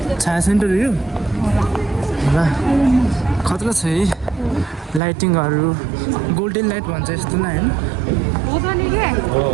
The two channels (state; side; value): drops out; left; at 5.0 s